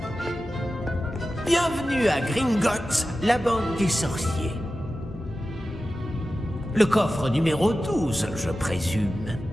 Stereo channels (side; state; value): both; normal; correlation 0.94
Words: Bienvenue à Gringotts, la banque des sorciers. Le coffre numéro 12, je présume.